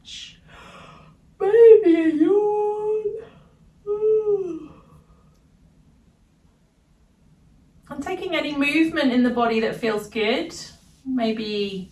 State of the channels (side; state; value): both; identical; correlation 1.00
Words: Maybe a yawn. And taking any movement in the body that feels good. Maybe